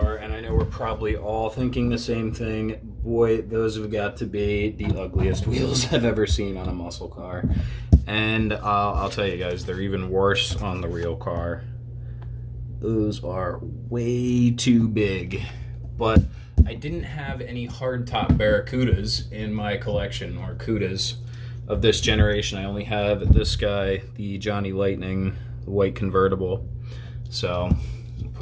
and I know we're probably all thinking the same thing, boy, those have got to be the ugliest wheels I've ever seen on a muscle car. And I'll tell you guys, they're even worse on the real car. Those are way too big. But I didn't have any hardtop Barracudas in my collection, or Cudas, of this generation. I only have this guy, the Johnny Lightning, the white convertible. So,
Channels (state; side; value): identical; both; correlation 1.00